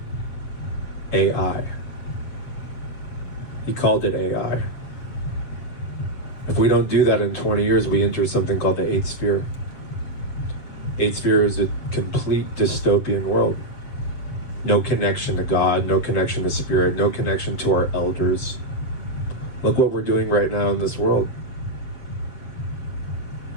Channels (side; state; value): right; late; 7.4 ms